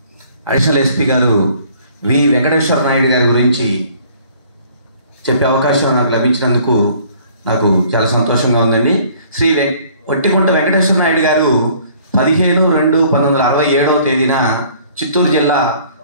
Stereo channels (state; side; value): inverted; both; correlation -0.56